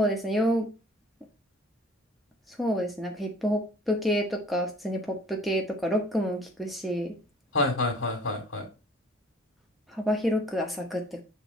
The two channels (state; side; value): normal; both; correlation 0.52